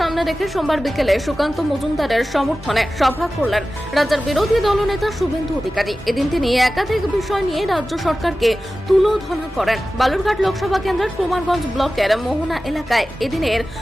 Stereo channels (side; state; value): both; normal; correlation 0.95